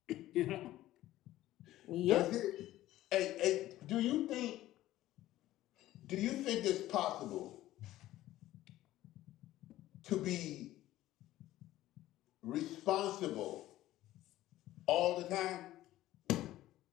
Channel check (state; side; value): quieter; right; 15.0 dB